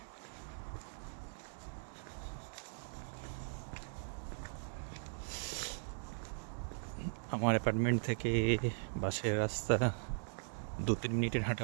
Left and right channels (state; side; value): silent; left; digital silence